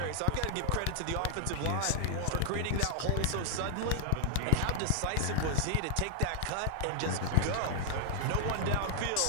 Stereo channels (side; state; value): both; different; correlation -0.01